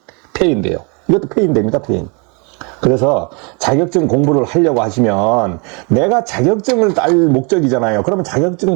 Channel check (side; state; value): left; quieter; 33.2 dB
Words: 이것도 폐인됩니다, 폐인. 그래서 자격증 공부를 하려고 하시면 내가 자격증을 딸 목적이잖아요. 그러면 자격증